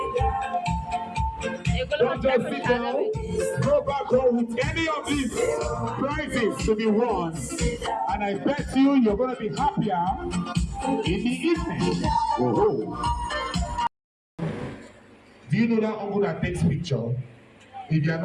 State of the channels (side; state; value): both; identical; correlation 1.00